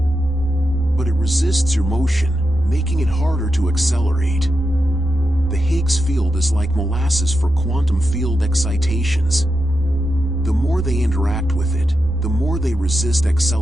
but it resists your motion, making it harder to accelerate. The Higgs field is like molasses for quantum field excitations. The more they interact with it, the more they resist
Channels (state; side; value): normal; both; correlation 0.88